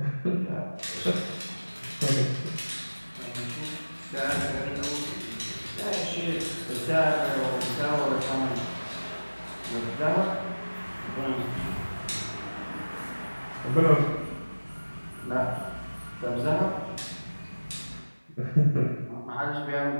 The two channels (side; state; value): both; inverted; correlation -1.00